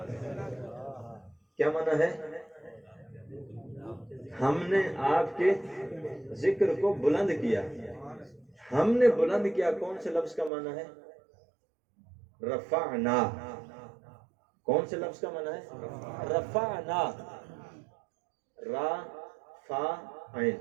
کیا معنی ہے؟ ہم نے آپ کے ذکر کو بلند کیا۔ ہم نے بلند کیا، کون سے لفظ کا معنی ہے؟ رفعنا۔ کون سے لفظ کا معنی ہے؟ رفعنا، را فا عین،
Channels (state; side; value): drops out; left; at 10.5 s